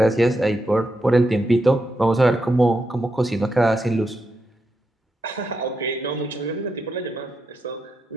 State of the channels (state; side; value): normal; both; correlation 0.84